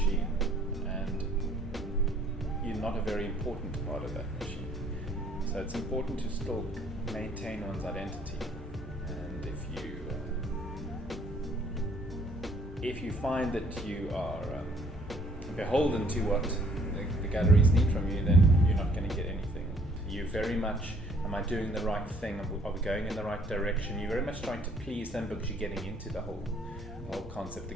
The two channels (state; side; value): normal; both; correlation 0.61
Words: and you're not a very important part of that machine. So it's important to still maintain one's identity. And if you find that you are beholden to what the galleries need from you, then you're not going to get anything. You very much, am I doing the right thing? Are we going in the right direction? You're very much trying to please them because you're getting into the whole concept, the